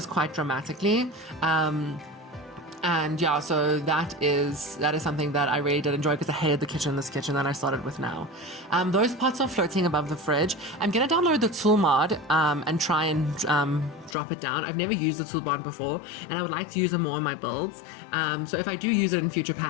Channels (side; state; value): right; drops out; at 14.2 s